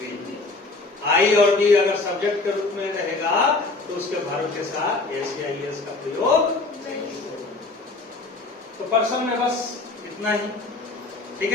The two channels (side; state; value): right; quieter; 3.5 dB